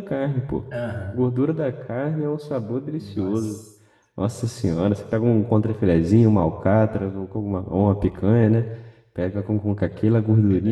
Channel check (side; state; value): both; identical; correlation 1.00